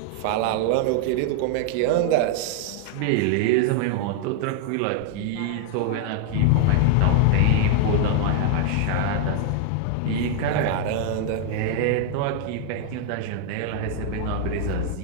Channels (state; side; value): different; both; correlation 0.00